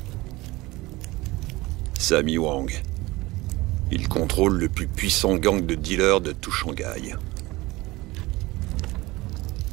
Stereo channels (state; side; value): quieter; left; 20.6 dB